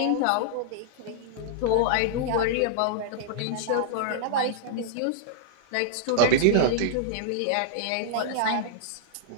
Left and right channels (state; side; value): different; both; correlation -0.01